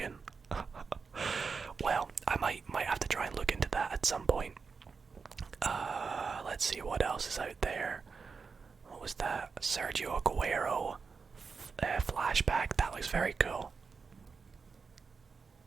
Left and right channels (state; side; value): quieter; left; 5.1 dB